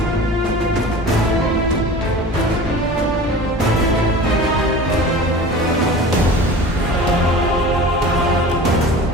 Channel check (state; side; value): normal; both; correlation 0.38